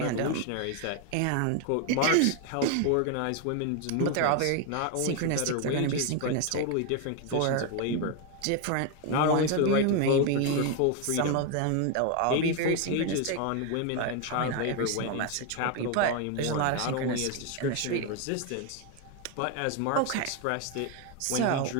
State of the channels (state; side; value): different; both; correlation 0.01